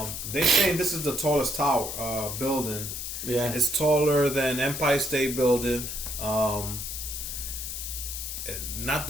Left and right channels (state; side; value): noise; left; hiss, 5 dB below the sound